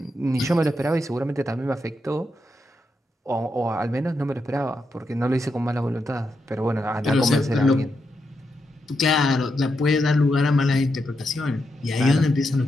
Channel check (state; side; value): normal; both; correlation 0.84